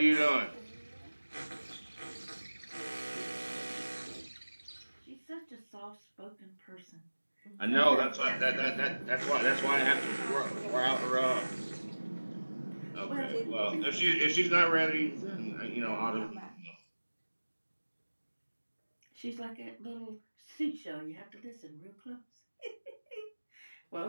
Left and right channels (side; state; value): both; inverted; correlation -1.00